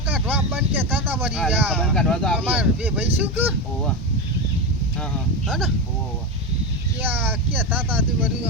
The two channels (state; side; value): normal; both; correlation 0.16